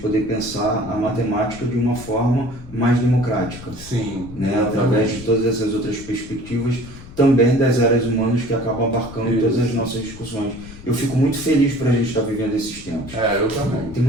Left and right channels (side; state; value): left; noise; rumble, 16 dB below the sound